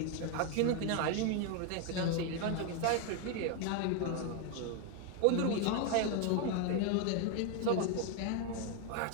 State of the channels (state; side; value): different; both; correlation 0.01